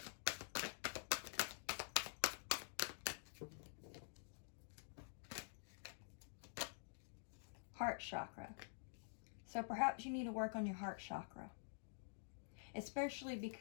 Heart chakra. So perhaps you need to work on your heart chakra. Especially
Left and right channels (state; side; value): silent; right; digital silence